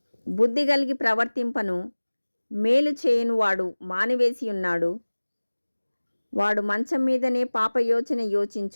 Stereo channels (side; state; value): both; inverted; correlation -1.00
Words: బుద్ధి కలిగి ప్రవర్తింపను మేలు చేయను వాడు మానివేసి ఉన్నాడు. వాడు మంచం మీదనే పాపయోచన